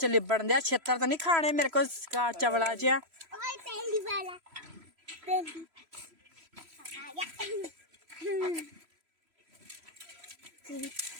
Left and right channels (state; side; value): late; left; 3.0 ms